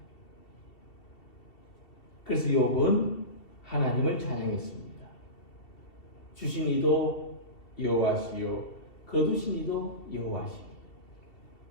그래서 욥은 하나님을 찬양했습니다. 주신 이도 여호와시요 거두신 이도 여호와시요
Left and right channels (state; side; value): late; right; 2.7 ms